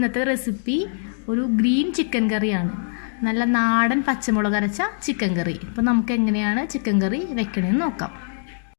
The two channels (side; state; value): right; silent; digital silence